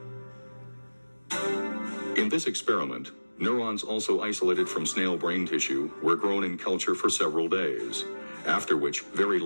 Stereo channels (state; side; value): inverted; both; correlation -1.00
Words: In this experiment, neurons also isolated from snail brain tissue were grown in culture for several days, after which very